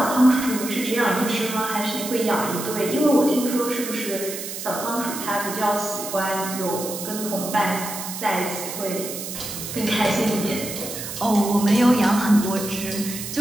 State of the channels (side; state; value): right; noise; hiss, 7 dB below the sound